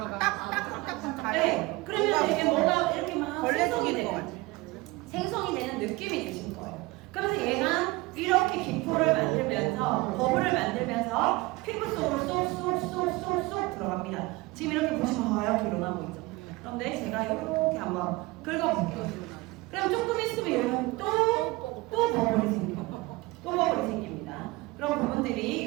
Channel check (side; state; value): left; quieter; 22.0 dB